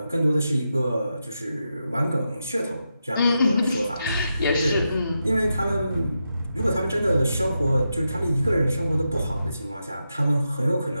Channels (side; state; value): both; inverted; correlation -0.87